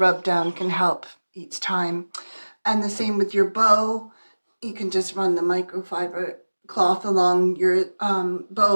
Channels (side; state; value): both; inverted; correlation -1.00